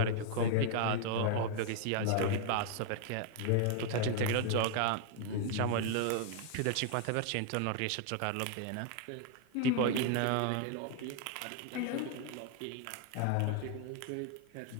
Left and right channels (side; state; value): both; different; correlation 0.00